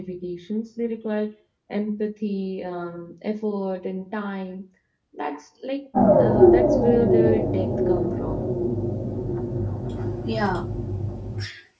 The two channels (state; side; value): identical; both; correlation 1.00